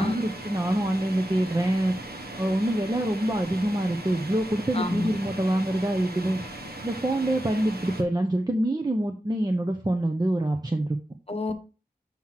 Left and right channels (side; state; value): both; normal; correlation 0.90